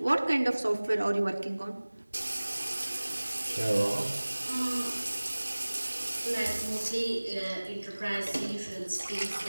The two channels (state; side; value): inverted; both; correlation -1.00